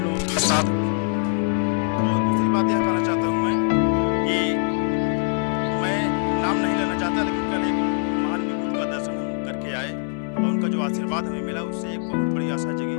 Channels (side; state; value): right; silent; 63 dB below the other